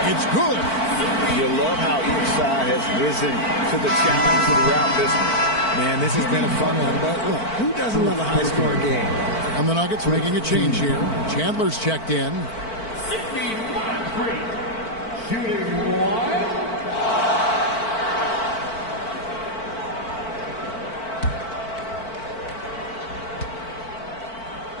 It's good. You love how each side has risen to the challenge throughout this one. Man, this has been a fun one, but look, who doesn't love a high-scoring game? And the Nuggets making a change here. Chandler's checked in. Shooting 1.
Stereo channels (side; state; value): right; late; 4.5 ms